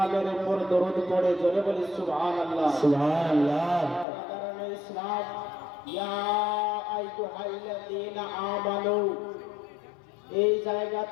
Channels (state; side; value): drops out; right; at 4.0 s